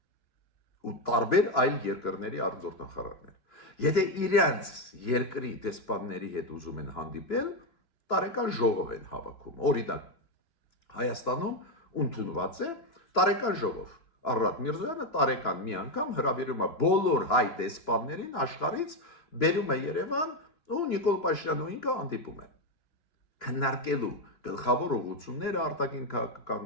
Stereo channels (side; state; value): right; late; 3.0 ms